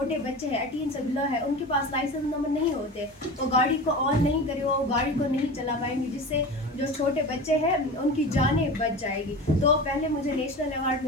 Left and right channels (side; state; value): both; normal; correlation 0.31